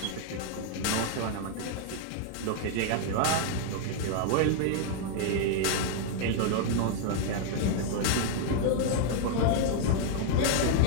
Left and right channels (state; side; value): different; both; correlation 0.00